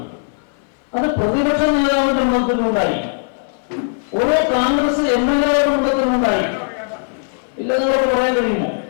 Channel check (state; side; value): silent; right; digital silence